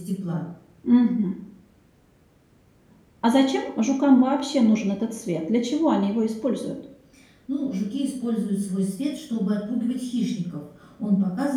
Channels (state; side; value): identical; both; correlation 1.00